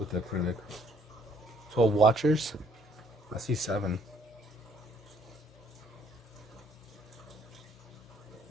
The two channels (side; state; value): both; normal; correlation 0.63